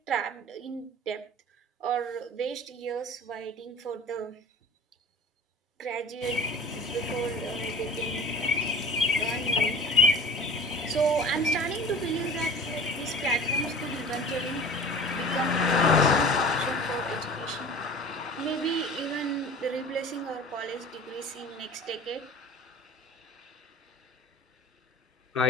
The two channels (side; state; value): both; normal; correlation 0.40